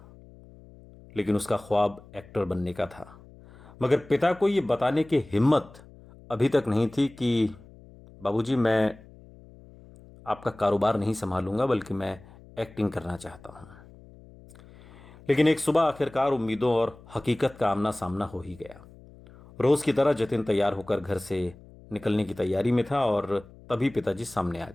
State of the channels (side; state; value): left; noise; hum, 22 dB below the sound